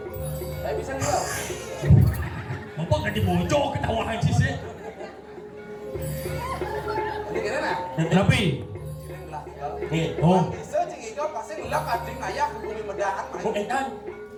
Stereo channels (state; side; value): identical; both; correlation 1.00